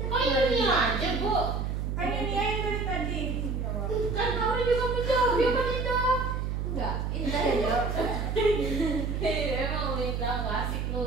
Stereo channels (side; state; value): right; noise; hum, 1 dB below the sound